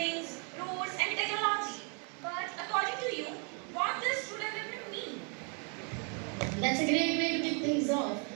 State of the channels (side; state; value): left; quieter; 38.3 dB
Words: roads, and technology. But according to you, what does true development mean? That's a great way to kick things off.